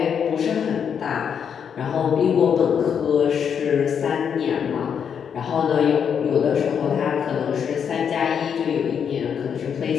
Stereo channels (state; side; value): quieter; right; 7.5 dB